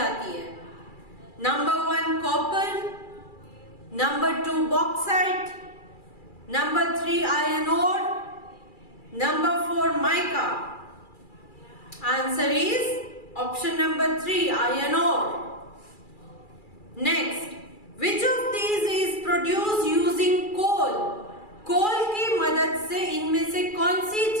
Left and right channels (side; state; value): right; late; 2.3 ms